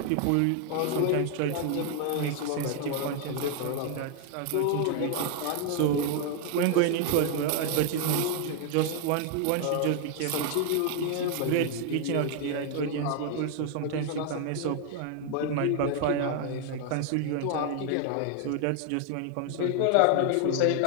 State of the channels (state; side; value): different; both; correlation 0.00